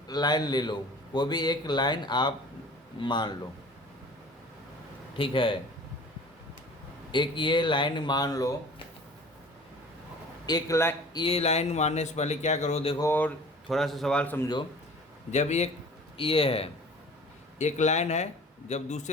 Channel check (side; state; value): both; normal; correlation 0.45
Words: लाइन ले लो, कोई भी एक लाइन आप मान लो। ठीक है, एक ये लाइन मान लो। एक लाइन, ये लाइन मारने से पहले क्या करो, देखो और थोड़ा सा सवाल समझो। जब एक ये है, एक लाइन है, जब